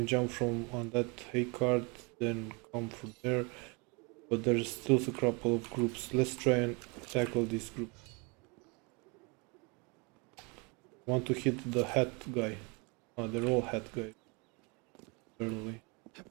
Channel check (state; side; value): quieter; left; 30.5 dB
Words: jump from on that hay cart, then come from there. But there's still a couple of groups. Let's try and tackle this group. Want to hit the hat guy. Oh, they're all hat guys. Early.